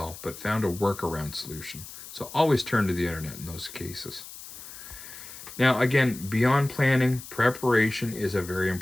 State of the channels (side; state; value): left; noise; hiss, 14 dB below the sound